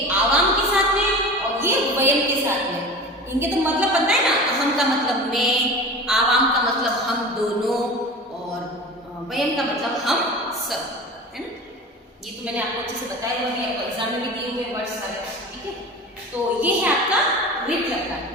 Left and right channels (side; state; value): both; normal; correlation 0.34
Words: आवाम के साथ में और ये वयम के साथ में। इनके तो मतलब पता है ना, अहम का मतलब मैं, आवाम का मतलब हम दोनों और वयम का मतलब हम सब, है ना। ये तो मैंने आपको अच्छे से बताया हुआ है, आपको एग्जाम में भी दिए हुए वर्ड्स सारे, ठीक है। तो ये है आपका रिट लकार।